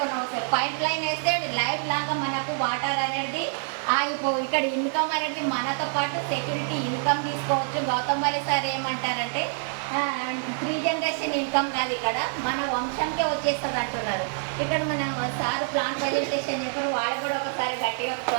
వస్తుంది. పైప్ లైన్ వేస్తే లైఫ్ లాగా మనకు వాటర్ అనేది ఇక్కడ ఇన్కమ్ అనేది మనతో పాటు సెక్యూరిటీ ఇన్కమ్ తీసుకోవచ్చు. గౌతమ్ బాలి సార్ ఏమంటారంటే, 3 generation ఇన్కమ్ కాదు, ఇక్కడ మన వంశంకే వచ్చేస్తుంది అంటున్నారు. ఇక్కడ మన సార్ ప్లాన్ ప్రజెంటేషన్ చెప్పారు, వాళ్ళు కూడా ఒకసారి గట్టిగా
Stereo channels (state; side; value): silent; left; digital silence